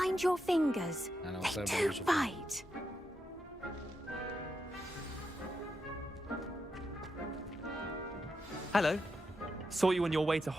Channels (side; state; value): both; normal; correlation 0.85